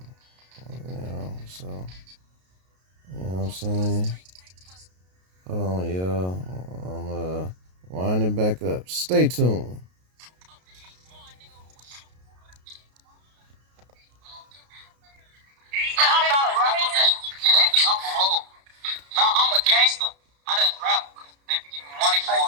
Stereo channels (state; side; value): late; left; 33 ms